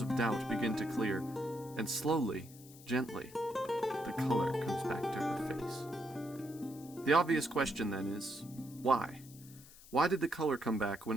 of doubt begin to clear, and slowly, gently, the color comes back to her face. The obvious question then is, why? Why did the color come back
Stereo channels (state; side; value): noise; left; hiss, 20 dB below the sound